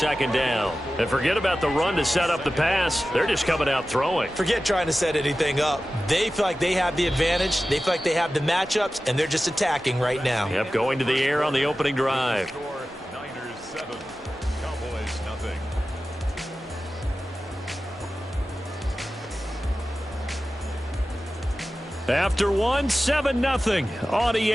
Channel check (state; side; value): normal; both; correlation 0.95